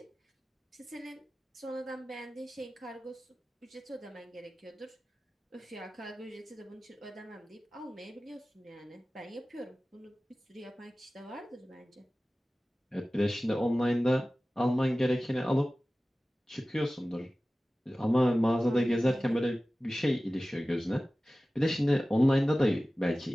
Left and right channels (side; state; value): both; normal; correlation 0.96